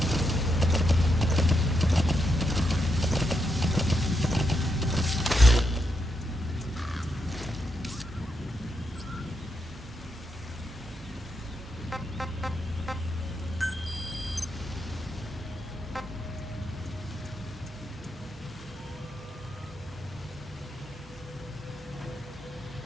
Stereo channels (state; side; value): normal; both; correlation 0.81